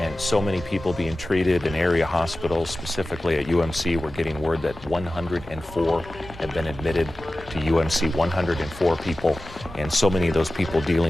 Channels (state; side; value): noise; left; hum, 20 dB below the sound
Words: so many people being treated in area hospitals, specifically at UMC. We're getting word that 104 have been admitted to UMC, 104 people, and so many of those people